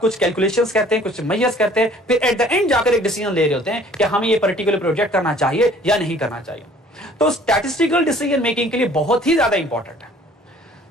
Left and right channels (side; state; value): both; normal; correlation 0.54